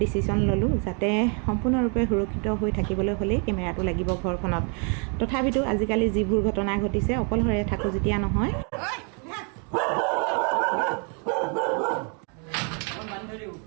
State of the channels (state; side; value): quieter; left; 37.9 dB